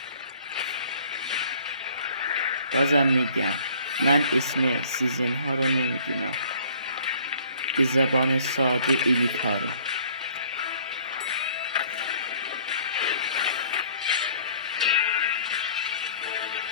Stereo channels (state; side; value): inverted; both; correlation -0.55